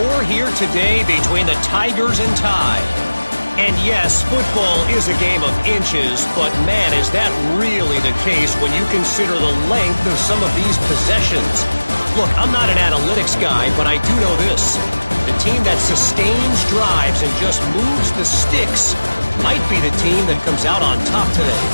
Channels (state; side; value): inverted; both; correlation -1.00